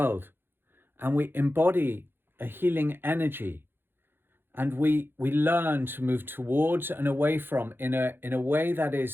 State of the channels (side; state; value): left; late; 0.10 ms